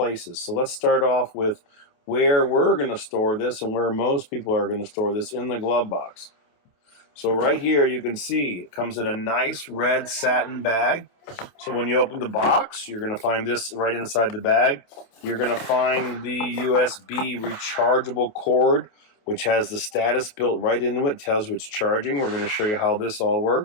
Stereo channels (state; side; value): late; right; 28 ms